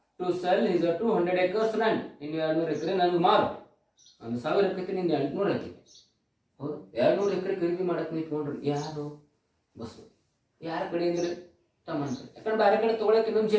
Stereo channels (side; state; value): both; identical; correlation 1.00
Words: to sell his 200 acres land. ಇನ್ನು 200 ಎಕರೆ ನನಗೆ ಮಾರು, ಒಂದು 1000 ಎಕರೆ ನಿಂದ 800 ಹಾಕಿ. ಹೌದು, 200 ಎಕರೆ ಖರೀದಿ ಮಾಡಕ್ ನಿಂತ್ಕೊಂಡ್ರಿ. ಯಾರು? ಬಸವ. ಯಾರ ಕಡೆ ಅಂದ್ರೆ ತಮ್ಮನ ಕಡೆ. ಯಾಕಂದ್ರೆ ಬೇರೆ ಕಡೆ ತಗೊಳಕ್ಕೆ ಇನ್ನೊಂದು